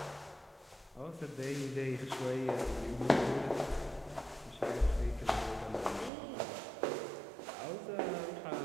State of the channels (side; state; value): left; drops out; at 6.1 s